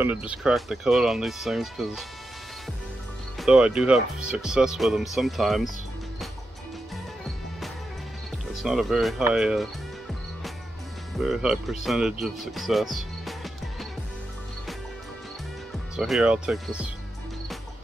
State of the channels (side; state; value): both; normal; correlation 0.88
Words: just crack the coat on these things, because though I do have success with them sometimes, it's not a very high percentage of success. So here I'll take this,